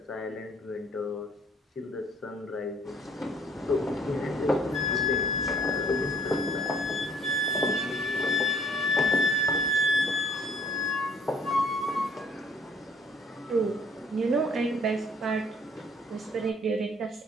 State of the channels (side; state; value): both; normal; correlation 0.59